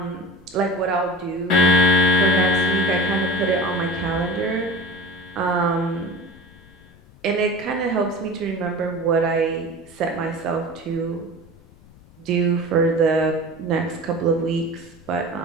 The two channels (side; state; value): left; noise; rumble, 25 dB below the sound